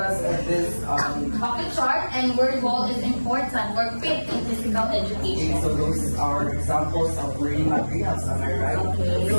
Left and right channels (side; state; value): both; inverted; correlation -1.00